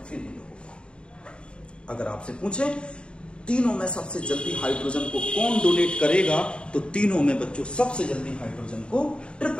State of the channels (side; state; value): right; late; 0.054 ms